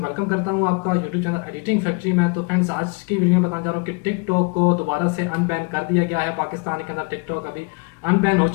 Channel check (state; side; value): quieter; right; 31.2 dB